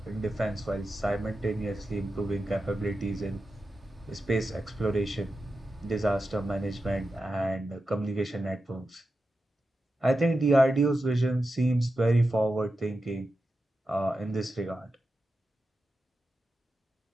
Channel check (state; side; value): normal; both; correlation 0.90